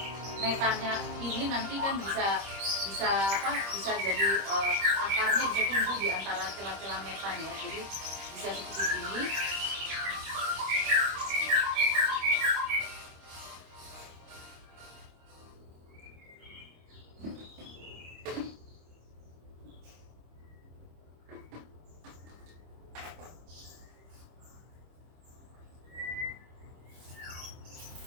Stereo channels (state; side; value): late; left; 26 ms